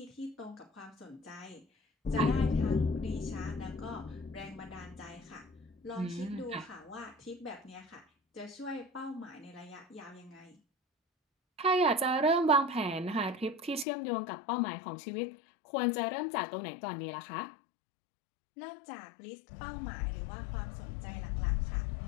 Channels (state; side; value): drops out; right; at 13.9 s